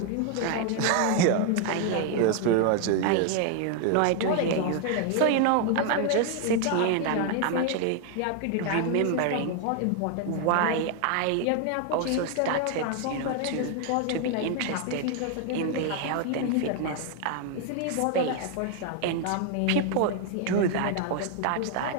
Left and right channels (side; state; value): both; different; correlation 0.00